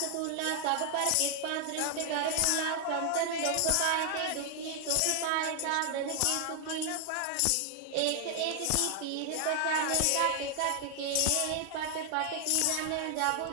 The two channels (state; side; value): different; both; correlation 0.00